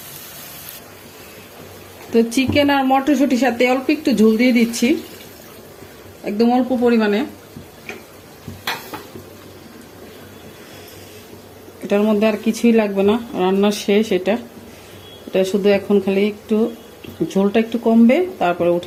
তো চিকেন আর মটরশুটির সাথে অল্প একটু ঝোল দিয়ে দিচ্ছি, একদম অল্প পরিমাণে। এটার মধ্যে আর কিছুই লাগবে না, রান্না শেষ। এটা শুধু এখন খালি একটু ঝোলটা একটু কমবে, তারপরে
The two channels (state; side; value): identical; both; correlation 1.00